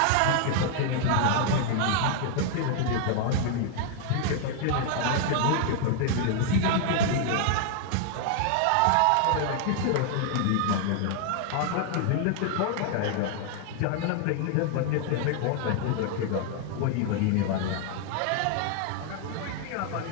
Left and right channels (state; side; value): different; both; correlation 0.00